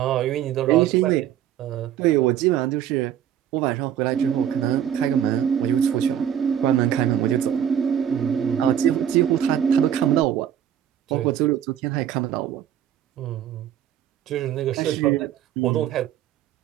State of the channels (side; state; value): left; quieter; 10.0 dB